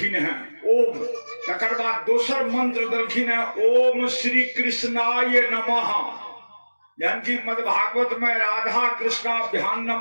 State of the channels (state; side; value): inverted; both; correlation -1.00